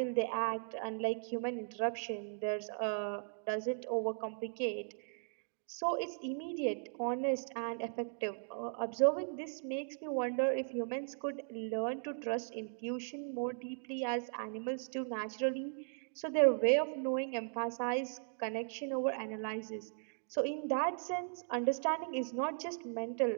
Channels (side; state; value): left; silent; digital silence